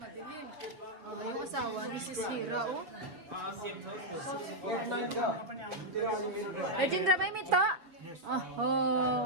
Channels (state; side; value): late; left; 5.8 ms